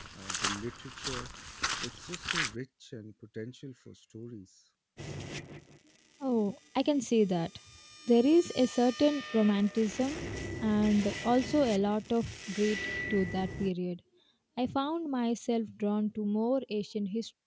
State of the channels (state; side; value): identical; both; correlation 1.00